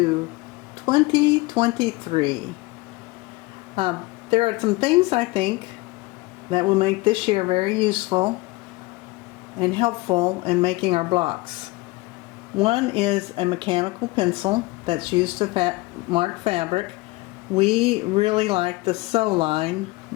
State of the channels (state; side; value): quieter; right; 22.5 dB